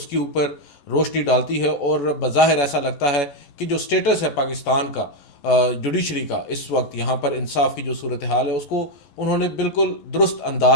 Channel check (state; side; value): late; right; 11 ms